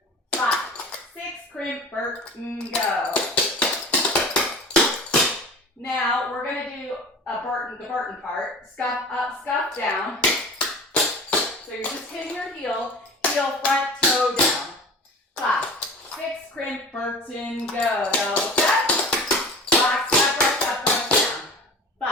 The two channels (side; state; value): both; normal; correlation 0.38